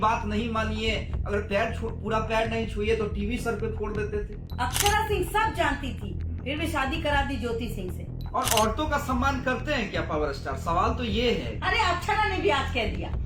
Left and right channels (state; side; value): identical; both; correlation 1.00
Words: नहीं मानिए, अगर पूरा पैर नहीं छुए तो टीवी सर पे फोड़ देते थे। अक्षरा सिंह सब जानती थी, फिर भी शादी करा दी ज्योति सिंह से। और औरतों का सम्मान करते हैं क्या पावर स्टार? सवाल तो ये है। अरे अक्षरा ने भी आज कह दिया,